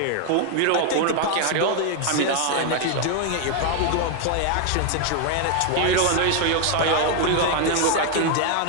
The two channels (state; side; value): different; both; correlation 0.00